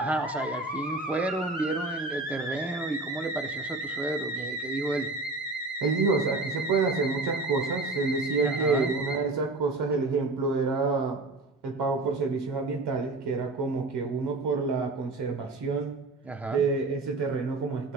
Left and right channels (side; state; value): left; quieter; 3.2 dB